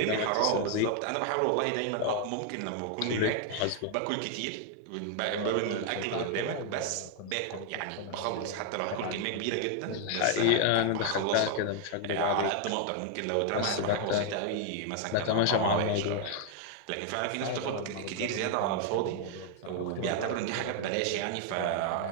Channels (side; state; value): both; different; correlation 0.00